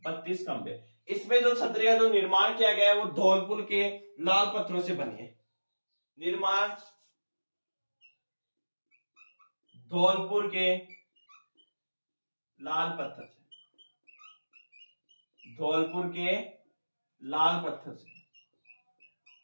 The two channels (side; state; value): both; inverted; correlation -1.00